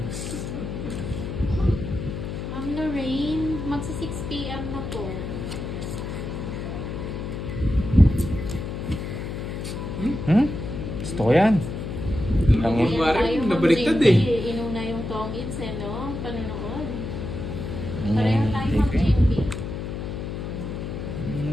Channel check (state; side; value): noise; left; hum, 5 dB below the sound